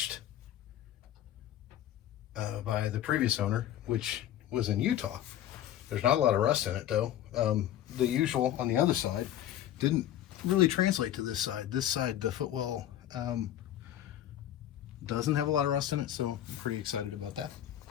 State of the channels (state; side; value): quieter; right; 11.8 dB